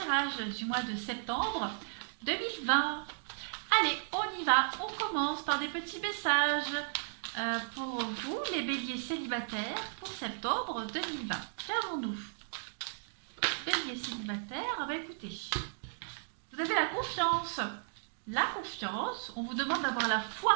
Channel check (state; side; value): silent; left; digital silence